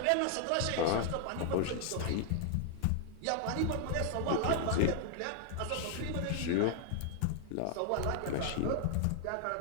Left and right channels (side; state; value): both; different; correlation 0.00